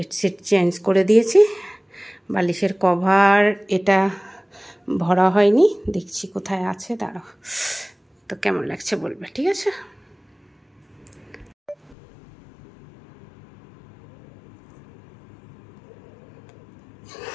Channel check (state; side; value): drops out; right; at 12.0 s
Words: চেঞ্জ করে দিয়েছি, বালিশের কভার এটা ভরা হয়নি, দেখছি কোথায় আছে, দাঁড়াও। তো কেমন লাগছে বলবে, ঠিক আছে।